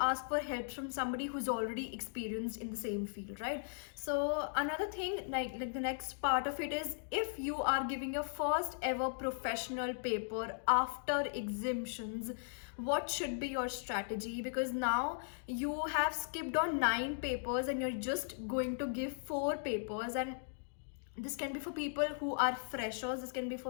for help from somebody who's already experienced in the same field, right? So another thing, like the next part of it is, if you are giving your first ever professional paper after exemptions, what should be your strategy? Because now you have skipped on 9 papers and you're just going to give 4 papers, and this can be for people who are freshers, this can be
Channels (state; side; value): silent; right; digital silence